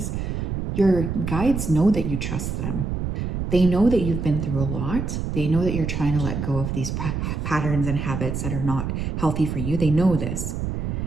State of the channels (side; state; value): right; noise; rumble, 3 dB below the sound